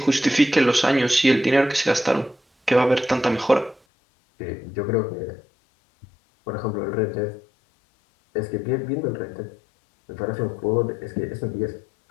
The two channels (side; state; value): right; drops out; at 3.8 s